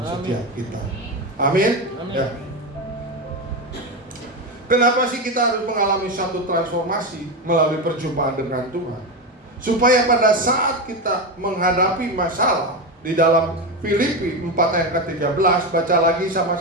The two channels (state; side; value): normal; both; correlation 0.15